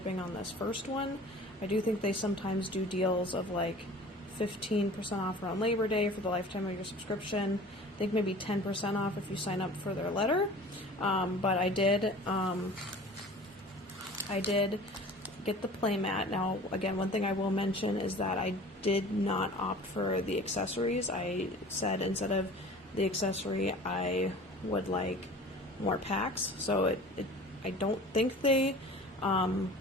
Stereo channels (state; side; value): normal; both; correlation 0.43